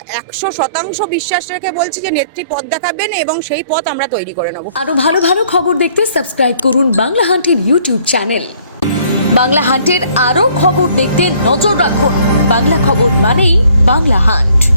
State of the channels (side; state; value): both; inverted; correlation -0.61